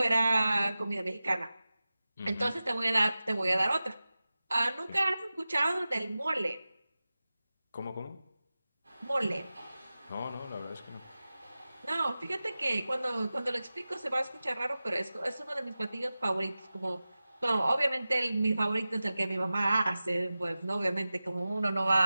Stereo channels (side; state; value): both; inverted; correlation -0.95